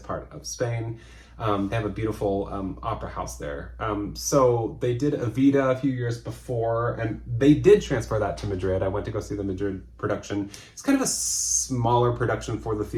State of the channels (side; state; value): both; identical; correlation 1.00